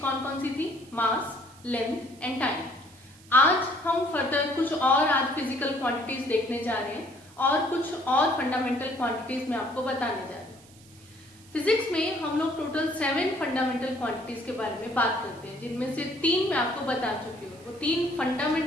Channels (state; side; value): noise; right; hiss, 25 dB below the sound